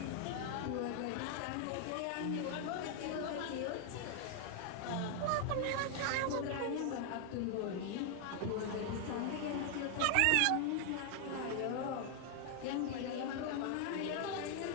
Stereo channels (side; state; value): both; different; correlation 0.00